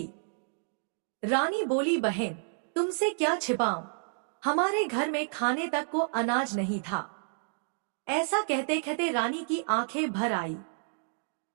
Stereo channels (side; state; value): left; silent; digital silence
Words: रानी बोली, बहन तुमसे क्या छिपाऊं, हमारे घर में खाने तक को अनाज नहीं था। ऐसा कहते कहते रानी की आंखें भर आई।